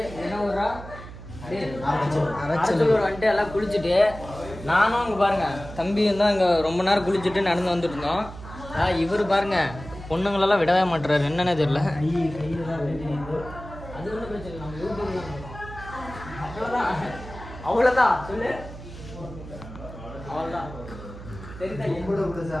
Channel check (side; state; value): right; noise; hum, 14 dB below the sound